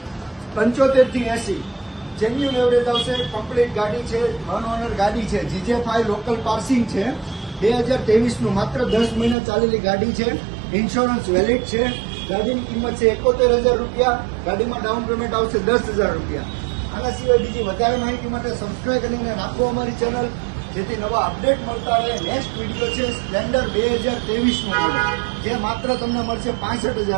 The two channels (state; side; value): drops out; left; at 9.3 s